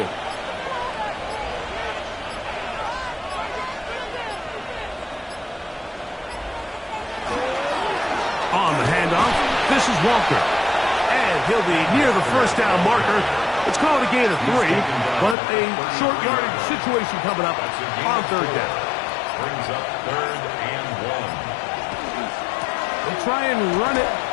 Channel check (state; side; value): drops out; right; at 15.4 s